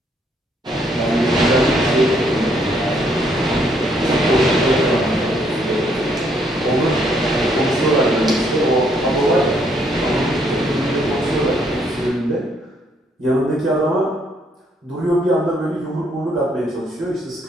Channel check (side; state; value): both; normal; correlation 0.70